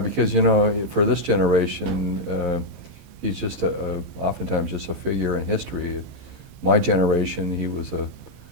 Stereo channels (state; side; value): late; left; 15 ms